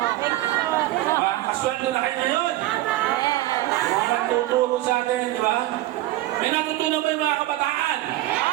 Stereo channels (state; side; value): quieter; left; 16.3 dB